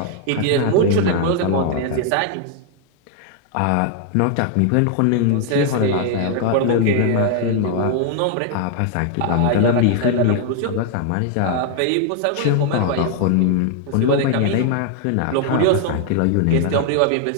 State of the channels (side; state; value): both; different; correlation 0.00